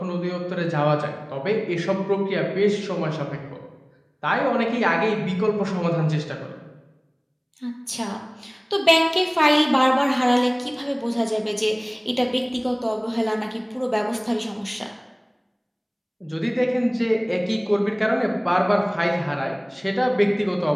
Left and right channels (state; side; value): identical; both; correlation 1.00